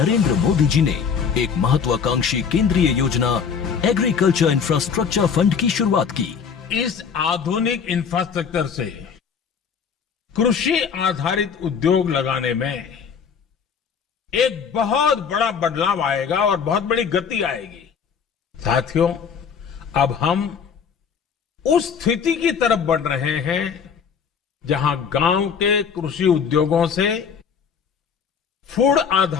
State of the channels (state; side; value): quieter; right; 6.6 dB